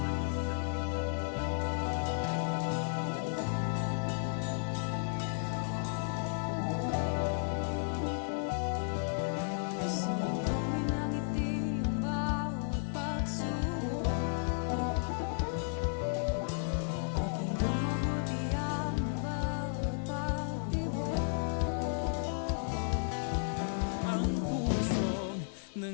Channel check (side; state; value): right; silent; 55 dB below the other